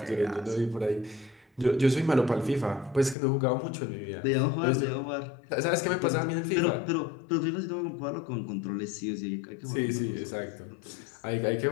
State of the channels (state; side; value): drops out; right; at 3.2 s